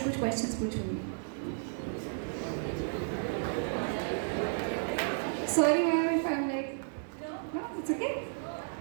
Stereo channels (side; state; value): left; silent; 56 dB below the other